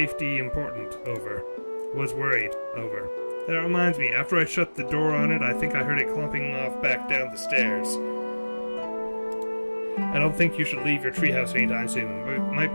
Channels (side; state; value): both; inverted; correlation -1.00